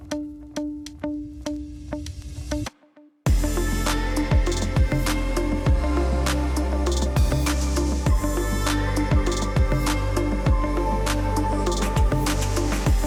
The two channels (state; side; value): identical; both; correlation 1.00